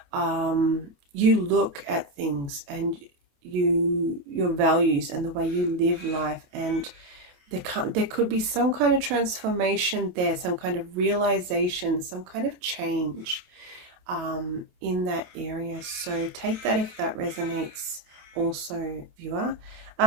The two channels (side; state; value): left; late; 28 ms